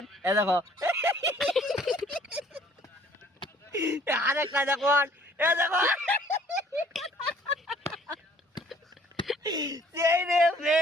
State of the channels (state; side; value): normal; both; correlation 0.57